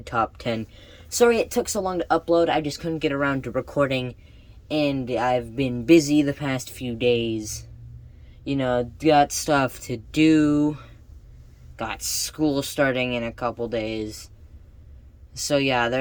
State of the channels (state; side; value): identical; both; correlation 1.00